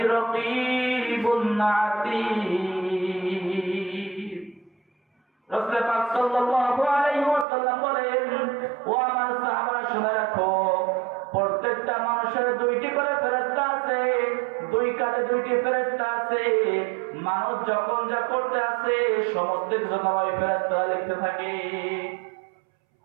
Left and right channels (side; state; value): left; drops out; at 7.5 s